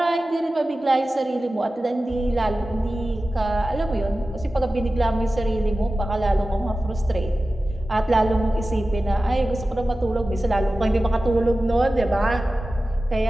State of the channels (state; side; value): normal; both; correlation 0.95